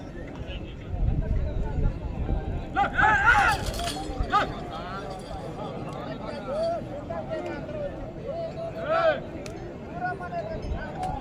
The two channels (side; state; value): both; identical; correlation 1.00